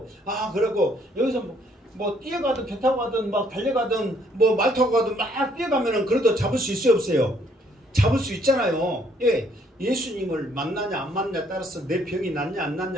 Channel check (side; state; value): both; normal; correlation 0.66